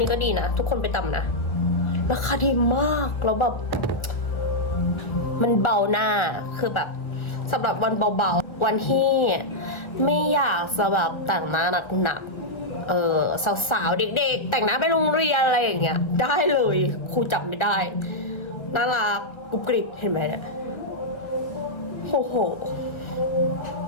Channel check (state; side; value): late; right; 1.1 ms